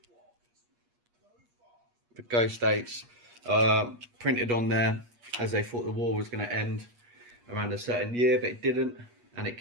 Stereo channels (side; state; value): left; late; 8.4 ms